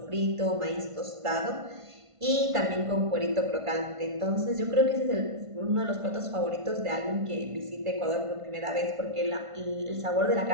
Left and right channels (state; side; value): late; left; 1.5 ms